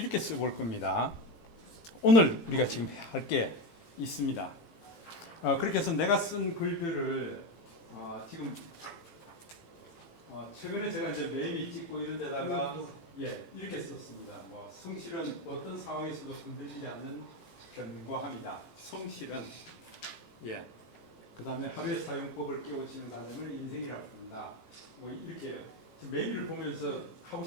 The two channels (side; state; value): right; late; 18 ms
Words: 써볼 겁니다. 오늘 우리가 지금 할 게 있습니다. 그렇게 해서 내가 쓴 글들을 지금 최근에 제가 이제 매미 찍고 이런 데다가 예, 이렇게 썼습니다. 뭐 성실은 어떤 상황에서도 흔들리지 않는 견고함이다. 성실은 예. 그다음에 하루의 사용법을 깨우치는 과정을 인생이라고 부른다. 뭐 이렇게요. 지금 매미를 보면서 하고